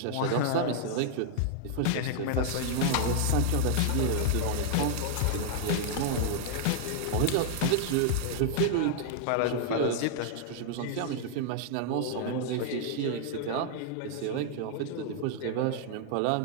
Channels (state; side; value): different; both; correlation -0.01